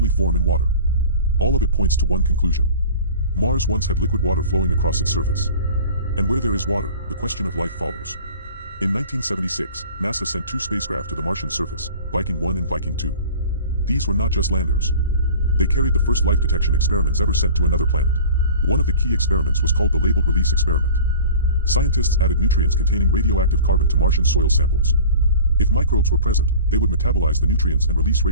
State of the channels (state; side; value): inverted; both; correlation -0.41